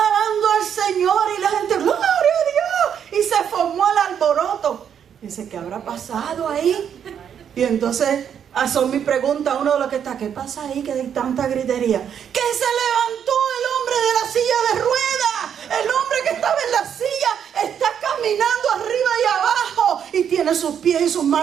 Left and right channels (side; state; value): left; quieter; 8.4 dB